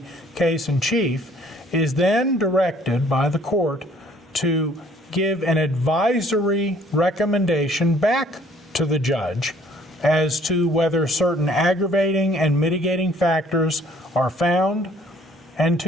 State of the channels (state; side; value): normal; both; correlation 0.59